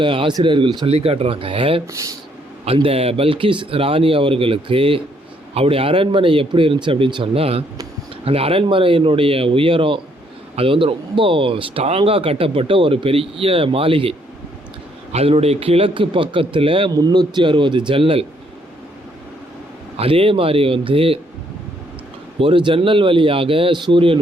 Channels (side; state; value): both; normal; correlation 0.69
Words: ஆசிரியர்கள் சொல்லி காட்டுறாங்க, அந்த பல்கிஸ் ராணி அவர்களுக்கு அவருடைய அரண்மனை எப்படி இருந்துச்சு அப்படின்னு சொன்னால், அந்த அரண்மனையினுடைய உயரம் அது ரொம்ப ஸ்ட்ராங்காக கட்டப்பட்ட ஒரு பெரிய மாளிகை. அதனுடைய கிழக்கு பக்கத்தில் 360 ஜன்னல். அதே மாதிரி ஒரு ஜன்னல் வழியாக சூரியன்